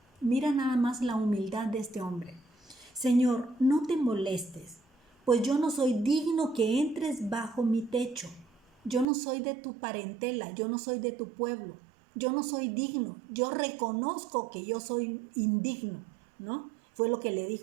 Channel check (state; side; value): drops out; left; at 9.1 s